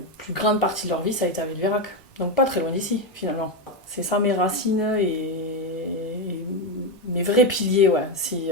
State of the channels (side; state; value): both; normal; correlation 0.09